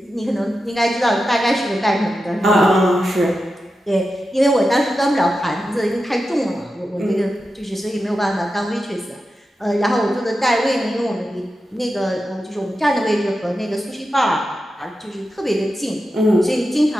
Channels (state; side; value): normal; both; correlation 0.90